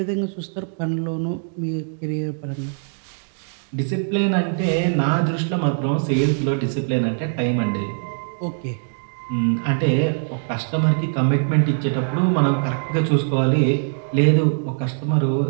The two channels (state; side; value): silent; left; digital silence